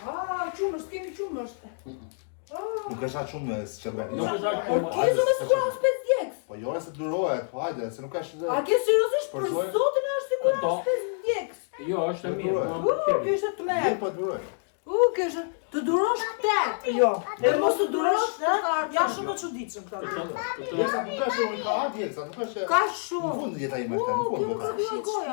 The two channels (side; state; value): right; silent; 60 dB below the other